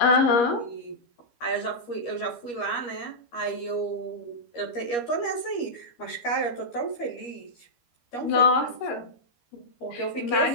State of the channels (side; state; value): right; late; 13 ms